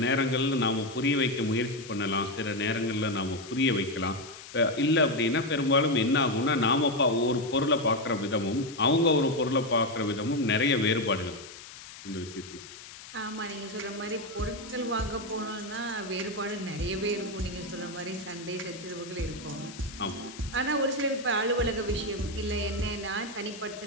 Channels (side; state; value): left; noise; hiss, 15 dB below the sound